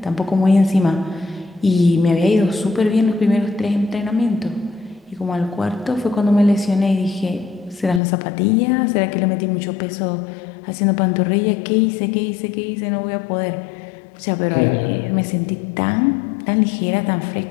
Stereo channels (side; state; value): right; drops out; at 8.0 s